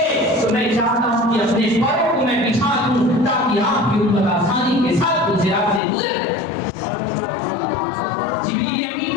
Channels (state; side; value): drops out; right; at 5.8 s